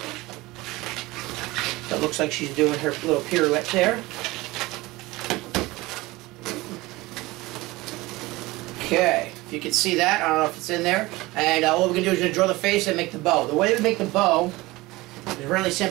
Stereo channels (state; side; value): quieter; left; 20.6 dB